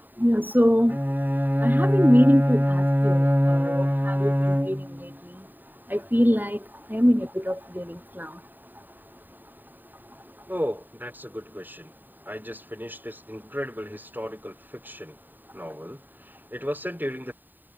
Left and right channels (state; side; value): late; left; 0.090 ms